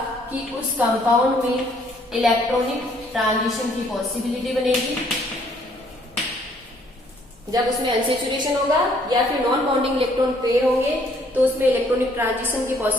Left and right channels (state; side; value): normal; both; correlation 0.64